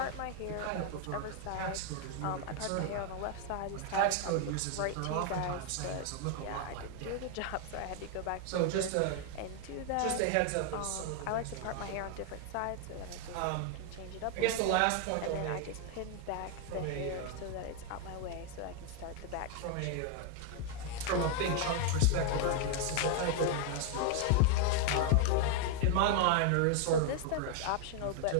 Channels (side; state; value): both; different; correlation 0.01